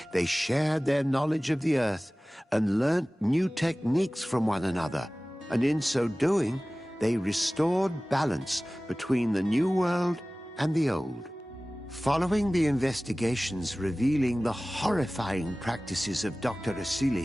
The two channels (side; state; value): both; normal; correlation 0.98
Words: they shared their knowledge of the earth and learnt new techniques from one another, and in so doing, they restored balance between the new world and the old. Following the investigations revealing the horrifying practices of Dr.